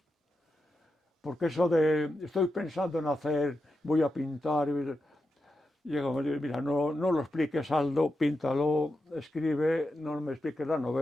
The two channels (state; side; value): normal; both; correlation 0.88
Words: Porque eso de estoy pensando en hacer, voy a pintar, llega, mira, no lo expliques, Aldo, píntalo, escribe, no me expliques la